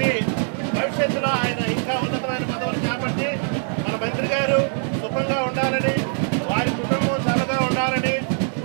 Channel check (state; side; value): silent; left; 64 dB below the other